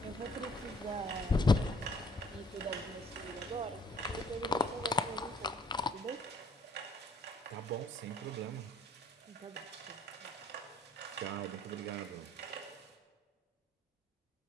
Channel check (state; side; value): normal; both; correlation 0.61